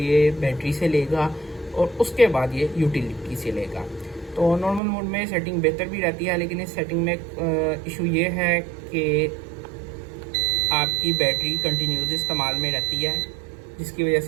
बैटरी से लेगा और उसके बाद ये यूटिलिटी से लेगा। तो नॉर्मल मोड में सेटिंग बेहतर भी रहती है, लेकिन इस सेटिंग में इशू ये है कि आपकी बैटरी कंटिन्यूस इस्तेमाल में रहती है, जिसकी वजह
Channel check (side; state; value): left; drops out; at 4.8 s